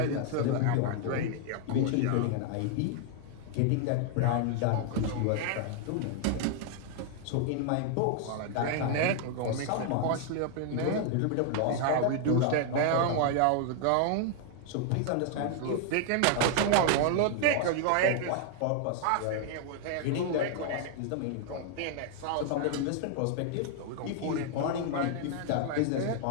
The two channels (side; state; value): both; different; correlation 0.00